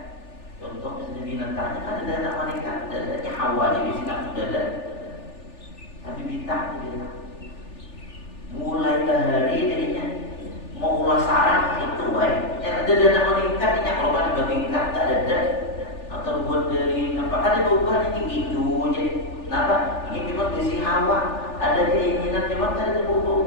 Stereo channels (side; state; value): right; late; 3.4 ms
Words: Contoh misalnya binatangnya kan ada anak meningkat, dadanya hawa jadi nafsu dada. Tapi bintang gitu. Mulai hari jadinya mau ulah sarang itu, ya ada anak meningkat, ini kalau kan bertingkat tak ada. Terbuat dari apa ada beban ini gitu jadi kenapa ini memang besi hawa ada keinginan memang ada